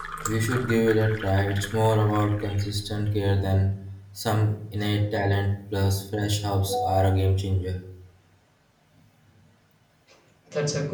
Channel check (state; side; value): identical; both; correlation 1.00